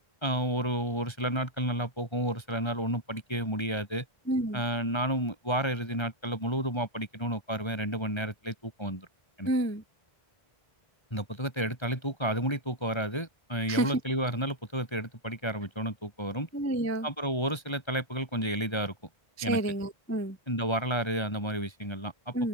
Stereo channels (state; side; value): late; right; 1.3 ms